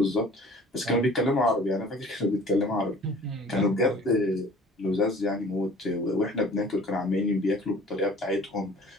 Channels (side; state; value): both; normal; correlation 0.48